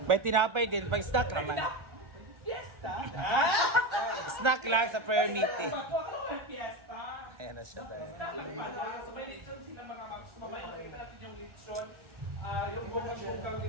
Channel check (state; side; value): late; left; 1.3 ms